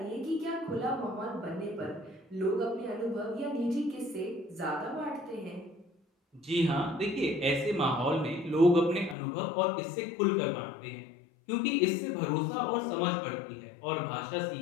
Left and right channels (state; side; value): drops out; right; at 9.2 s